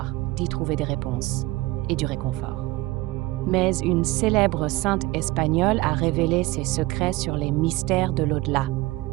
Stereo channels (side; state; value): left; quieter; 19.9 dB